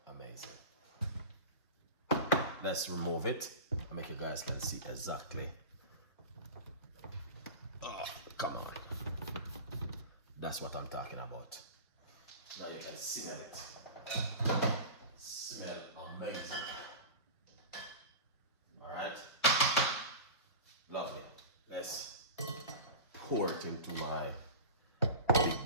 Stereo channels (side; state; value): both; inverted; correlation -0.31